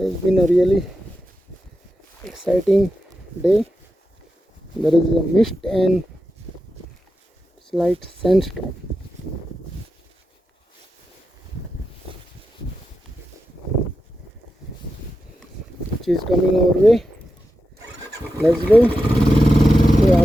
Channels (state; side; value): normal; both; correlation 0.89